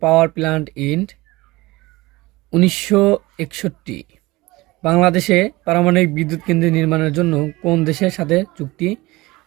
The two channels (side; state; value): left; quieter; 20.9 dB